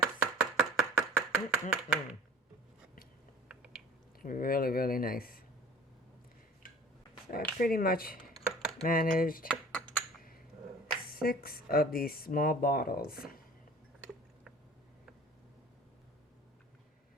Really, really nice. So I pretty much managed 6 of these small bottles.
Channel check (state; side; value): normal; both; correlation 0.45